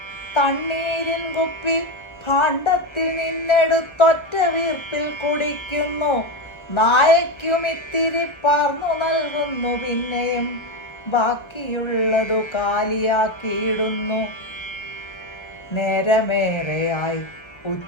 തണ്ണീരിൻ കുപ്പി ഭാണ്ഡത്തിൽ നിന്നെടുത്തൊറ്റ വീർപ്പിൽ കുടിക്കുന്നു. നായയ്ക്കുമിത്തിരി പാർന്നു നൽകുന്നു. പിന്നെയും ബാക്കിയുള്ളതു കാലിയാക്കിയിടുന്നു. നേരമേറെയായി,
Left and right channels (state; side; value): late; right; 1.1 ms